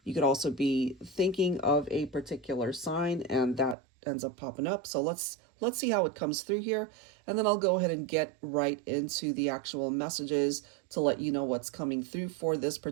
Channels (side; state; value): left; drops out; at 3.8 s